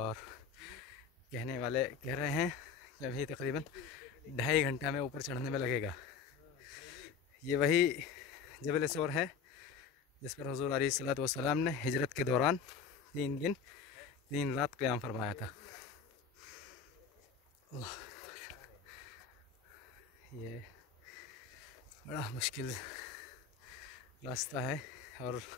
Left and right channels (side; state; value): right; quieter; 6.3 dB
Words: कहने वाले कह रहे हैं कि अभी तकरीबन 2.5 घंटा में ऊपर चढ़ने में लगेगा। ये वही जबल सौर है जिस पर हुज़ूर अलैहिस्सलातु वस्सलाम ने हिजरत के दौरान 3 दिन 3 रात क़याम फरमाया था। ये बड़ा मुश्किल रास्ता है, और